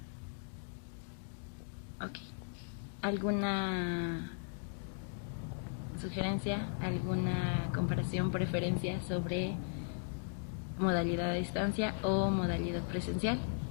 Ok. ¿Alguna sugerencia, alguna comparación, preferencia sobre modalidad a distancia o modalidad presencial?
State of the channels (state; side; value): silent; right; digital silence